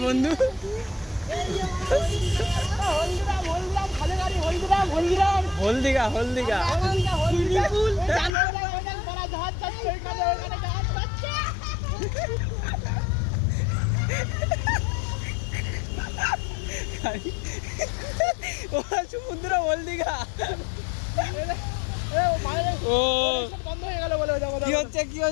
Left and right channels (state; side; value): drops out; right; at 8.3 s